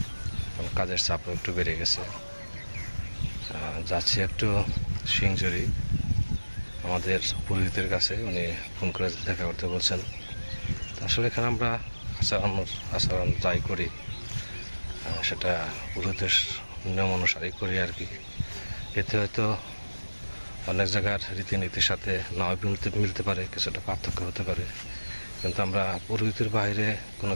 কাজের চাপও একটু বেড়ে গেছে। যাচ্ছি একটু সিংজুরি আমাদের পুরোহিতের কাছে, উনি ফোন করে দেখা করতে বলছেন। আসলে এখানে আমরা আচরণ যাই করি সেটা পুরোহিতের নিয়ম অনুসারেই করি আর কি। এতে হয়তো অনেক জায়গার রীতিনীতির সাথে নাও মিলতে পারে, কিছুটা পার্থক্য হতে পারে, কিন্তু আমরা পুরোহিতের বাইরে কোনো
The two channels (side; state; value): both; inverted; correlation -1.00